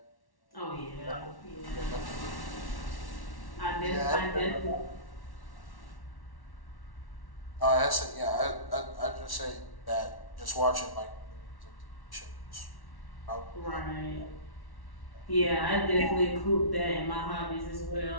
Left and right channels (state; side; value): late; right; 1.1 ms